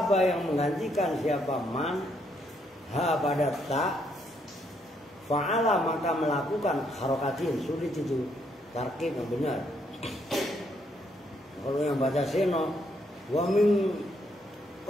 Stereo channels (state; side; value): normal; both; correlation 0.73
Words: yang menggantikan siapa man ha pada ta, fa'ala, maka melakukan harokatin. Sulit itu tarkib yang benar. Kalau yang baca seno, wa min